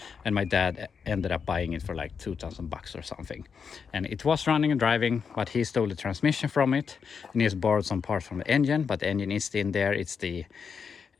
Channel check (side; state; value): right; quieter; 6.2 dB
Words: and my dad ended up buying it for like $2,000 or something. And it was running and driving, but he stole the transmission from it, and he has borrowed some parts from the engine, but the engine is still in there. It's the